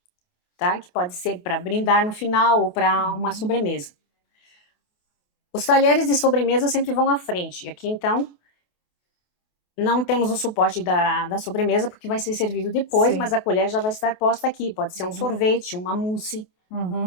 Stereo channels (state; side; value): late; right; 28 ms